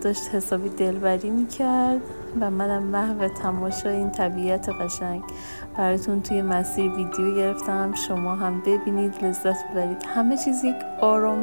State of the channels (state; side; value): inverted; both; correlation -1.00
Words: حسابی دلبری میکرد و منم محو تماشای این طبیعت قشنگ. براتون توی مسیر ویدیو گرفتم شما هم ببینید لذت ببرید. همه چیز یک